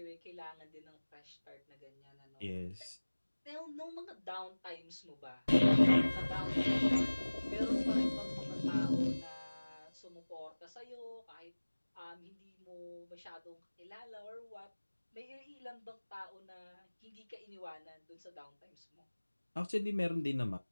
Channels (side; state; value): both; inverted; correlation -1.00